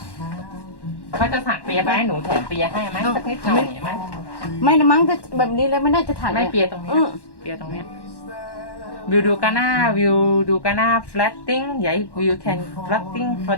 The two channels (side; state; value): right; late; 1.1 ms